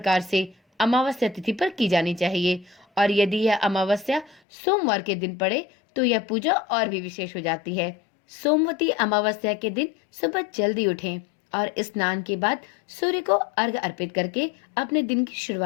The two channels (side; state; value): right; drops out; at 4.4 s